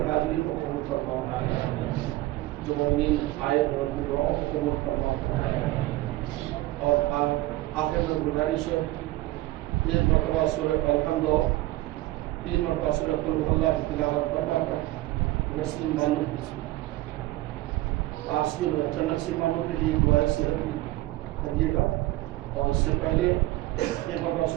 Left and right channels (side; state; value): left; quieter; 17.8 dB